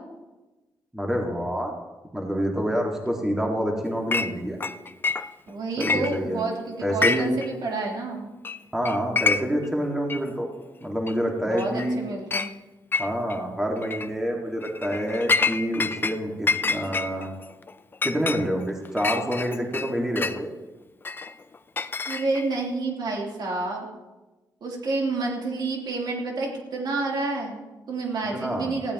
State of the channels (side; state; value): both; normal; correlation 0.62